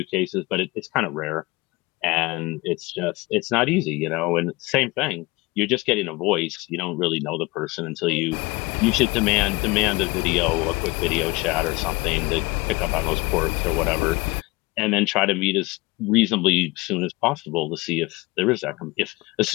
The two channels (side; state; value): right; quieter; 23.1 dB